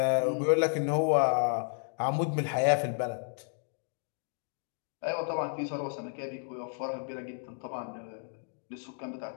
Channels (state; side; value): silent; right; 56 dB below the other